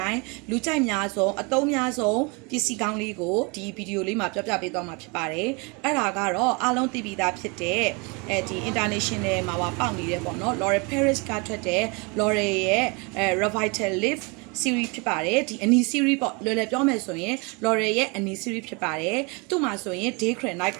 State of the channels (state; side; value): quieter; left; 30.2 dB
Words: ုင်းလူကြိုက်များဆုံးအသုံးများဆုံးပစ္စည်းကောင်းလေးကိုဒီဗီဒီယိုလေးမှာပြပြပေးသွားမှာဖြစ်ပါတယ်။အဲ့ဒါကတော့အားလုံးသိပြီးသားဖြစ်တဲ့ဒီ international မှာပေါက်နေတယ်ပေါ့နော်။ L'Oreal Paris ကထွက်တဲ့ L'Oreal ရဲ့Revital Lift series ဖြစ်ပါတယ်ဒီအနီ series ပေါ့လွယ်လွယ်ပြောမယ်ဆိုရင် L'Oreal ရဲ့အနီ series ဖြစ်ပါတယ်သူ့မှာဆိုရင် day cream night